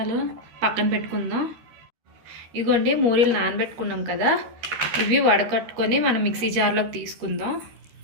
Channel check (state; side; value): late; left; 13 ms